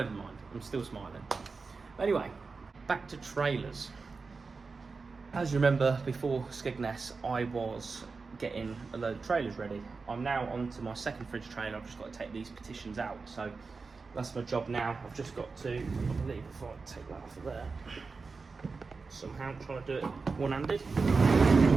mind, I'm still smiling. Anyway, back to trailers. As you remember, before Skegness, I was getting a load of trailers ready. I'm now on to my second fridge trailer. I've just got to take these petitions out. So that's my job now. I've just got to, I believe, if I take that off of there, somehow trying to do it one-handed.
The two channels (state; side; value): quieter; left; 4.4 dB